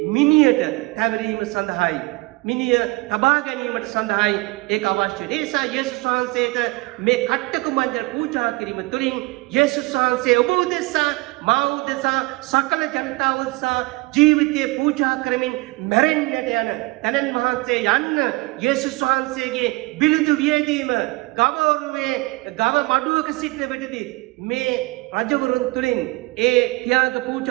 මිනියට තැවරීම සඳහායි. මිනිය තබා ගැනීමට සඳහායි ඒක අවශ්‍ය. ඒ නිසා යේසුස් වහන්සේට මේ කට්ටකු මංජල් පූජා කිරීම තුළින් යේසුස් වහන්සේ ඔබ උදෙසා, මා උදෙසා, සකල ජනතාව උදෙසා ජීවිතය පූජා කරමින් මැරෙන්නට යන තැනැන් වහන්සේ යන්න යේසුස් වහන්සේගේ බිලිඳු වියදීම ගවරුවේ ගව මඩුවක සිටින විටදී මේ රජවරුන් තුළින් ඒ ත්‍යාග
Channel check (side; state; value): left; quieter; 24.1 dB